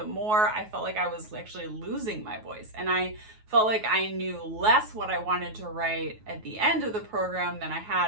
more I felt like I was actually losing my voice. And I felt like I knew less what I wanted to write at the end of the program than I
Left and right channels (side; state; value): left; late; 9.4 ms